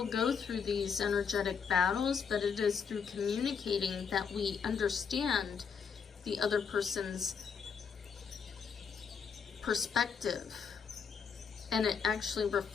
go through these energetic battles, but it is through communicating that we understand the other person's perspective, and it actually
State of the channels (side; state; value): right; quieter; 6.4 dB